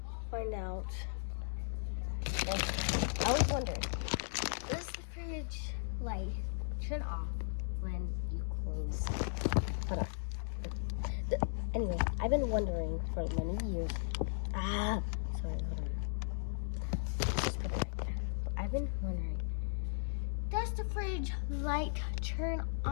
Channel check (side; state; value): right; silent; digital silence